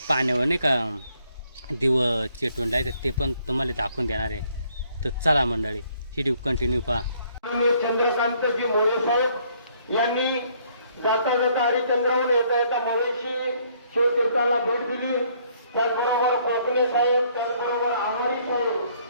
पाण्यावर नाही का दिवं चेटून लायचं ते पण तुम्हाला दाखवून देणार आहे. तर चला मंडळी हिडू कंटिन्यू पहा. चंद्रकांतजी मोरे साहेब यांनी जाता जाता हरिचंद्राहून येता येता मवेशी शिवतीर्थाला भेट दिली. त्याचबरोबर कोकणे साहेब, त्याचबरोबर आमारी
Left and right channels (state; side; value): inverted; both; correlation -0.66